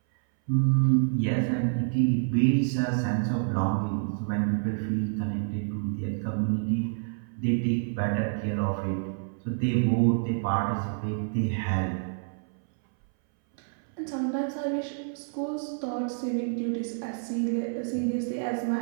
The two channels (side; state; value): left; silent; 59 dB below the other